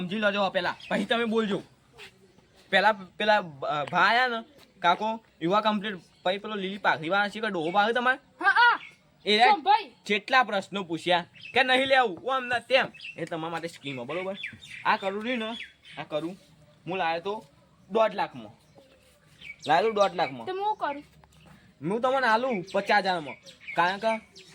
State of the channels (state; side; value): identical; both; correlation 1.00